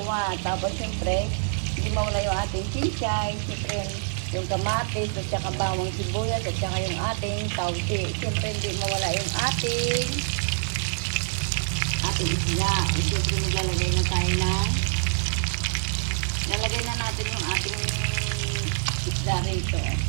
Tapos siyempre, hindi mawala yung ating chinchay. Siyempre, yung kamatis at saka bawang sibuyas at saka yung ating tausi. Siyempre, hindi mawala yung ating isda. O siyempre, maglalagay na tayo ng lalagay na natin yung ating isda rito.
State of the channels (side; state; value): left; silent; digital silence